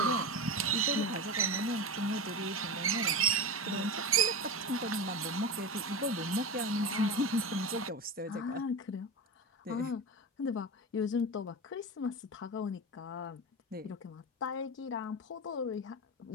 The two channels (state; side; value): normal; both; correlation 0.23